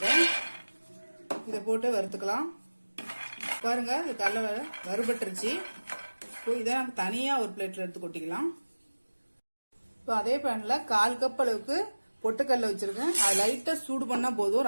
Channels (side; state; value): both; inverted; correlation -1.00